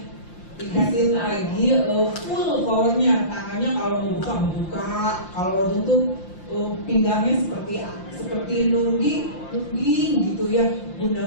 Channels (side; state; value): right; late; 5.7 ms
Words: Dikasihin lagi full powernya, tangannya kalau mau buka, kalau tutup pinggangnya seperti nungging gitu ya. Bunda